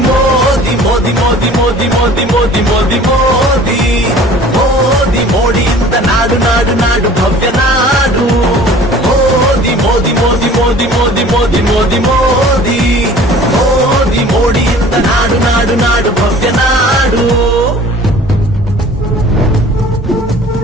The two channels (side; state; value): both; normal; correlation 0.47